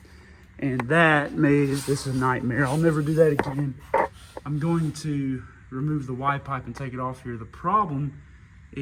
and that made this a nightmare. I'll never do that again. I'm going to remove the Y pipe and take it off here. The problem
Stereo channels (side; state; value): both; identical; correlation 1.00